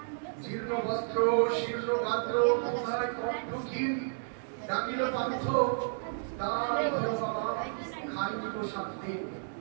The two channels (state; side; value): silent; left; digital silence